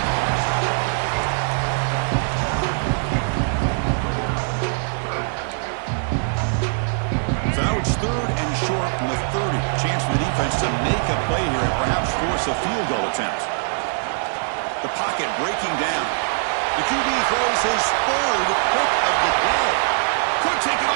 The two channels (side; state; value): left; silent; digital silence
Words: So now it's 3rd and short from the 30. Chance for the defense to make a play here and perhaps force a field goal attempt. The pocket breaking down. The QB throws his 3rd pick of the day. Could take it